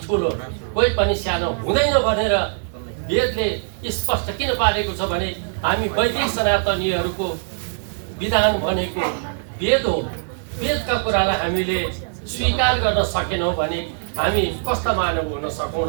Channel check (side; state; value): left; silent; digital silence